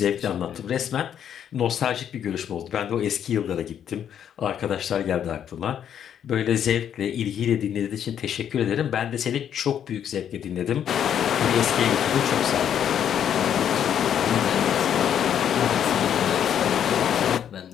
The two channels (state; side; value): quieter; right; 9.3 dB